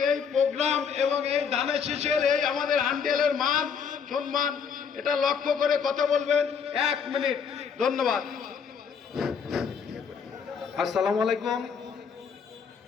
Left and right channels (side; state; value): right; quieter; 6.7 dB